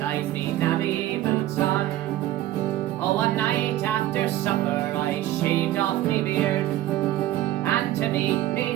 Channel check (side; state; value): left; quieter; 14.4 dB